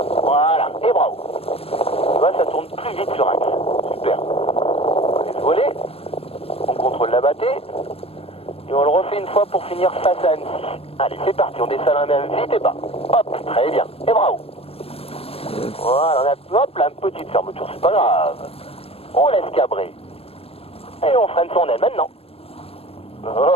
Voilà, et bravo. Tu vois, ça tourne plus vite sur axe. Super. On laisse voler, on contrôle la battée, et on le refait une fois pour finir face à Annecy. Allez, c'est parti, on descend la main vite et bas. Hop, très bien, et bravo. Voilà, on a hop, là, une petite fermeture, c'est pas grave. On laisse cabrer. Et on freine son aile maintenant.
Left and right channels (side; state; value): right; late; 0.28 ms